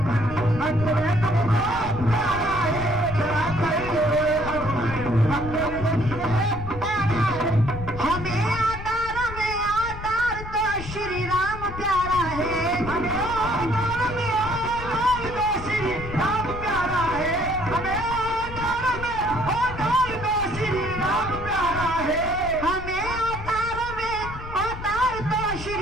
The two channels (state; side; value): noise; left; rumble, 10 dB below the sound